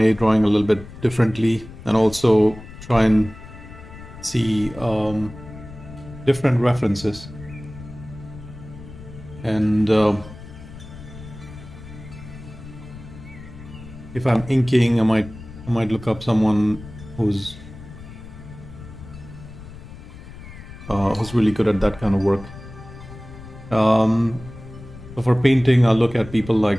drawing a little bit differently, and also try and see different references. And if I'm inking, I might look up someone who's really good at that kind of work. So for painting, I'll look at people like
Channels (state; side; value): noise; left; rumble, 16 dB below the sound